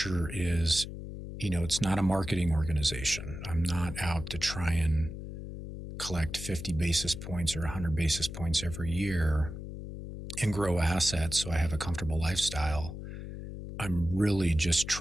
is, it's not a marketing organization. I'm not out to try and collect 50 basis points or 100 basis points every year and grow assets so I have a comfortable lifestyle. I'm really just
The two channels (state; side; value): noise; left; hum, 9 dB below the sound